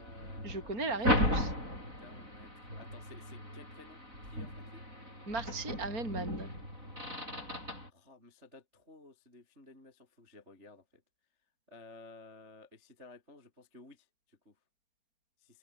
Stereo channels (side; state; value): left; late; 4.0 ms